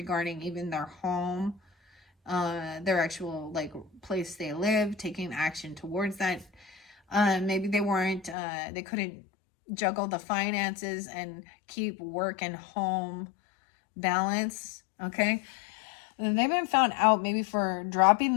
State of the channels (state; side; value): drops out; right; at 8.3 s